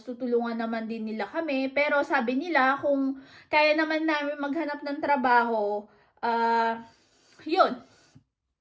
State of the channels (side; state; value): both; identical; correlation 1.00